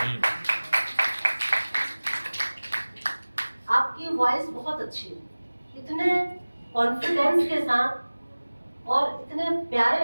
आपकी वॉइस बहुत अच्छी है, इतने कॉन्फिडेंस के साथ और इतने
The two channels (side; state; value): both; inverted; correlation -1.00